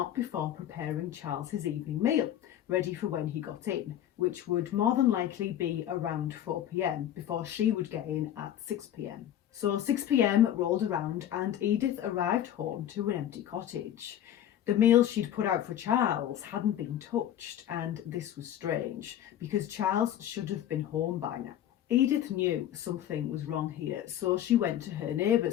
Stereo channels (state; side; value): quieter; right; 11.2 dB